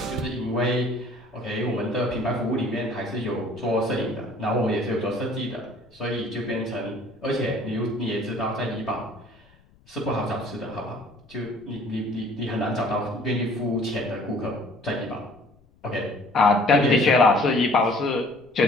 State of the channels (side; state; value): left; noise; rumble, 30 dB below the sound